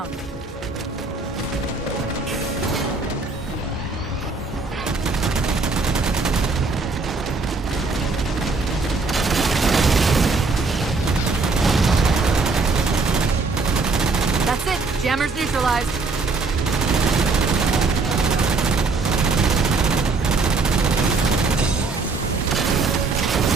That's it. Jammers neutralized.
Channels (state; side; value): quieter; left; 4.0 dB